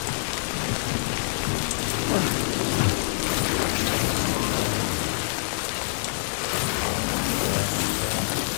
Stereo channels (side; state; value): right; silent; 61 dB below the other